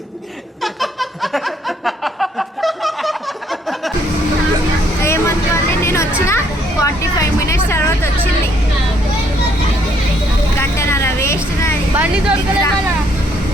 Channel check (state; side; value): normal; both; correlation 0.67